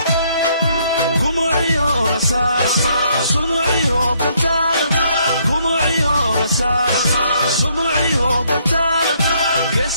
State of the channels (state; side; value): inverted; both; correlation -0.69